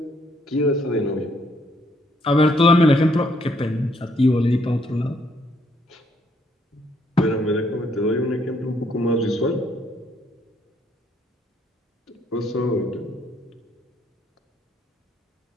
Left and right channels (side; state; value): both; normal; correlation 0.69